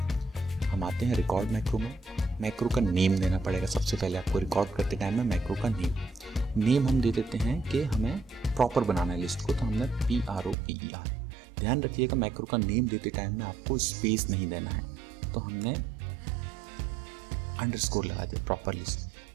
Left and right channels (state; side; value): drops out; left; at 10.6 s